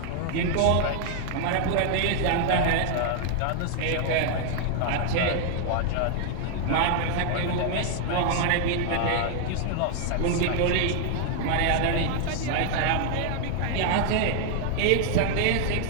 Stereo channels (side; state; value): both; different; correlation 0.00